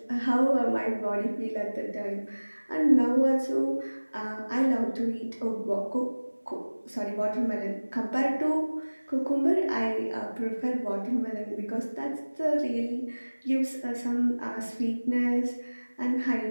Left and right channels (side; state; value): both; inverted; correlation -1.00